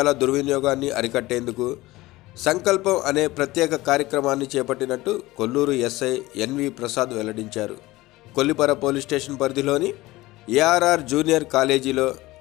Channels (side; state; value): right; quieter; 18.9 dB